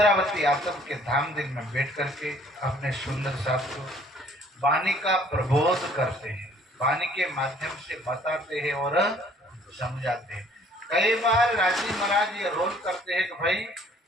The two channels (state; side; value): normal; both; correlation 0.58